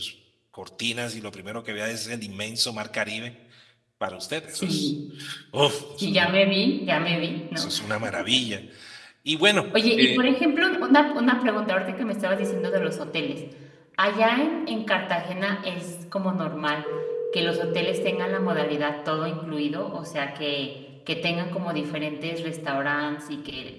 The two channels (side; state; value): both; identical; correlation 1.00